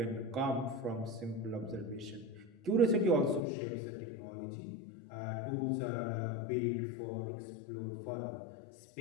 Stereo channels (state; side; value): drops out; right; at 3.4 s